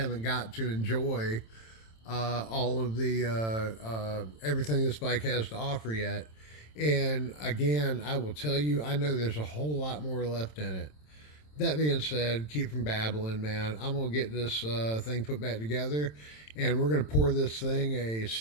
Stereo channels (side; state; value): right; late; 27 ms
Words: got to enjoy all of the everything this bike has to offer yet. And again, I will tell you, I know there's a whole lot more left in it. That being said, keep from babbling, man. I'm going to get this thing put back together, and we're going to pour this thing a